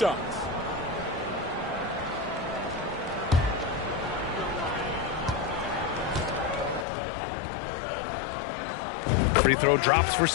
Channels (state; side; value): drops out; right; at 6.9 s